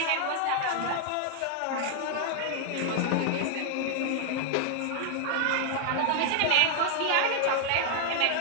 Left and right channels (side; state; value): both; different; correlation 0.00